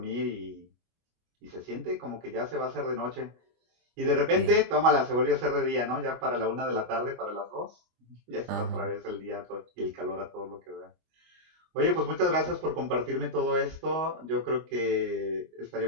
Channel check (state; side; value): late; left; 25 ms